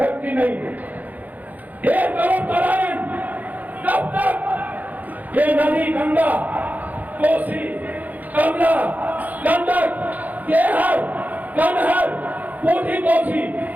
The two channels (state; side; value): late; left; 0.080 ms